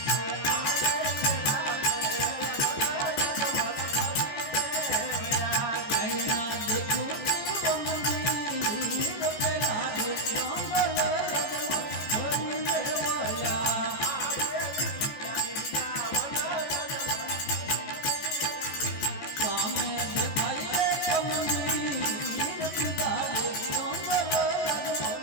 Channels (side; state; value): right; late; 14 ms